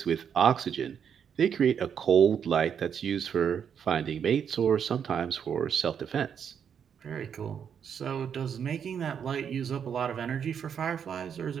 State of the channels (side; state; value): left; quieter; 7.8 dB